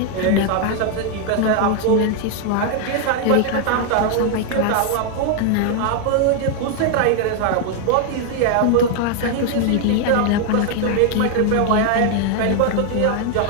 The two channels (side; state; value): both; different; correlation 0.00